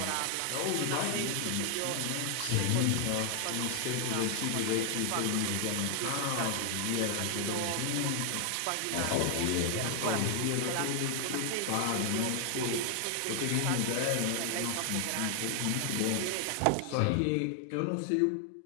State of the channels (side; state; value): both; different; correlation 0.00